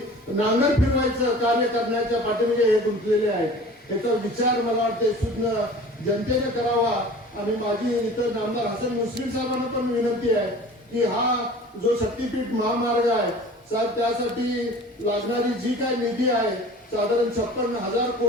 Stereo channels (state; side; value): normal; both; correlation 0.43